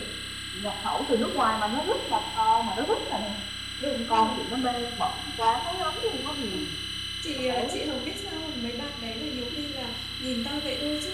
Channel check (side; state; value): both; identical; correlation 1.00